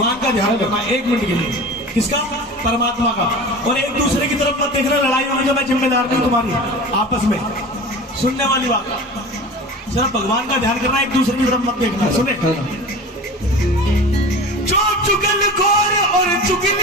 का ध्यान करना 1 मिनट के लिए। किसका? परमात्मा का। और एक दूसरे की तरफ मत देखना, लड़ाई होगी तो मैं जिम्मेदार नहीं तुम्हारी आपस में। सुनने वाली बात, सिर्फ भगवान का ध्यान करना, एक दूसरे की तरफ मत देखना। सुने, जो चुगलखोर और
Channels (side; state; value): both; normal; correlation 0.35